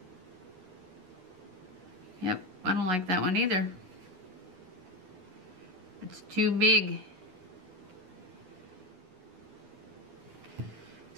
Yep, I don't like that one either. It's too big.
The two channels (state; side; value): late; left; 11 ms